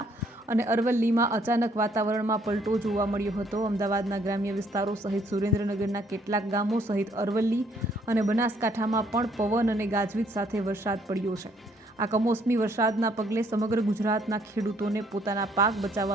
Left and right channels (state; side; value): normal; both; correlation 0.66